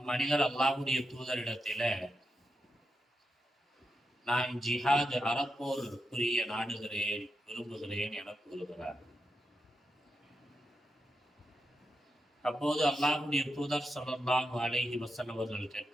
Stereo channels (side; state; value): both; normal; correlation 0.86